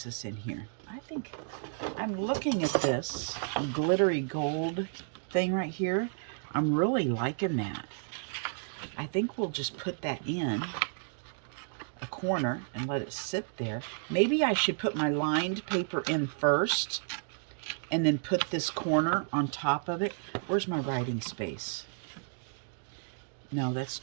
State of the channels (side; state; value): left; silent; digital silence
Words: this in here? I think I'm looking at this glittery gold thing right here. I'm really liking that. I think we'll just put that in a corner and let it sit there. Maybe I should put my lined paper in first and then put this corner on top of it. Where's my writing space? No, that's